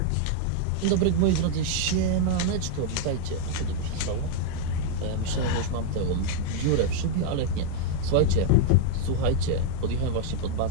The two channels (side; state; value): both; different; correlation 0.00